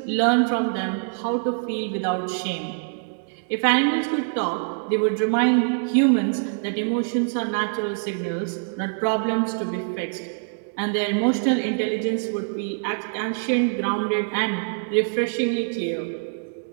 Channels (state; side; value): silent; left; 62 dB below the other